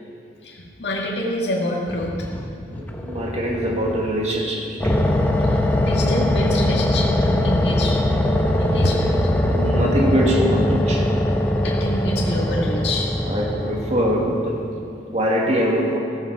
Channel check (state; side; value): normal; both; correlation 0.74